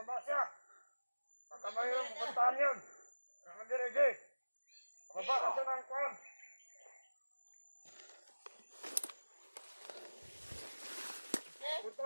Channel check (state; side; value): inverted; both; correlation -1.00